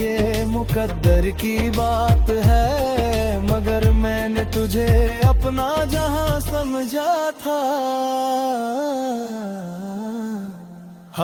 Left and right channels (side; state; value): both; identical; correlation 1.00